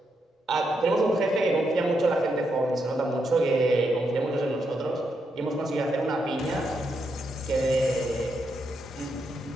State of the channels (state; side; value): normal; both; correlation 0.81